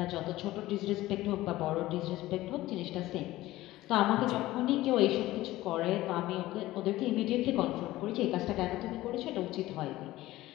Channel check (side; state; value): right; quieter; 16.8 dB